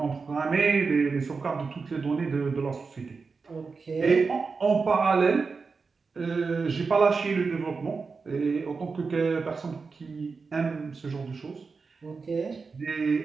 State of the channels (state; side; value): quieter; left; 4.7 dB